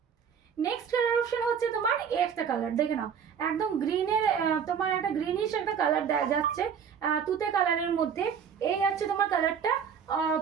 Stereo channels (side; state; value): left; quieter; 7.3 dB